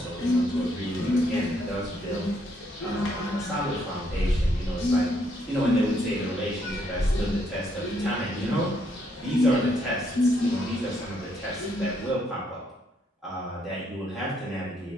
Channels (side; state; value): both; normal; correlation 0.72